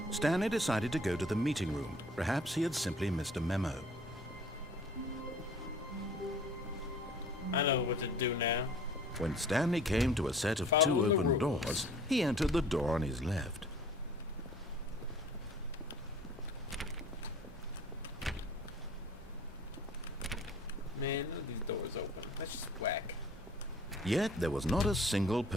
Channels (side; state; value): both; normal; correlation 0.50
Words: Stanley decided to go to the meeting room. Perhaps he had simply missed a memo. I know what to do now. When Stanley came to a set of Follow two the open rules. doors, he entered the door on his left. Man, none of these doors open. That's just whack. Yet there was not a single